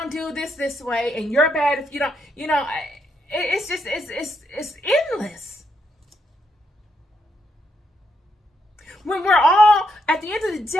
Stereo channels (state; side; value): normal; both; correlation 0.78